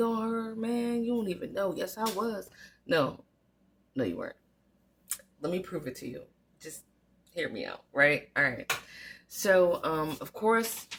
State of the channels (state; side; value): identical; both; correlation 1.00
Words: on her, man. You don't even know. Yes, I was. No, no, you weren't. Let me prove it to you. Just hear me out, right? All right. So, of course,